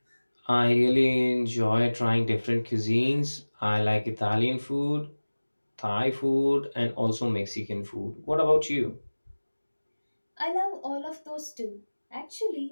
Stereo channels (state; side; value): inverted; both; correlation -1.00